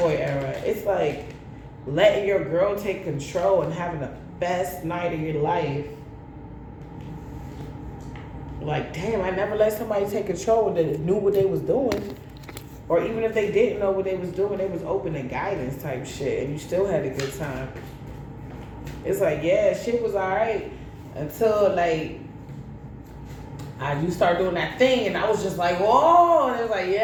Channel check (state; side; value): identical; both; correlation 1.00